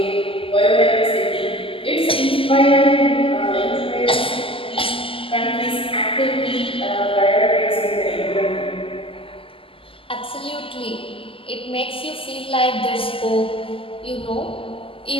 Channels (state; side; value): late; right; 0.26 ms